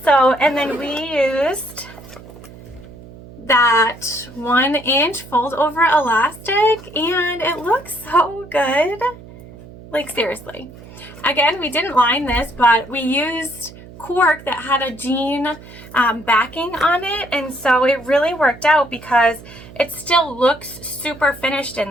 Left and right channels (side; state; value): right; noise; hum, 18 dB below the sound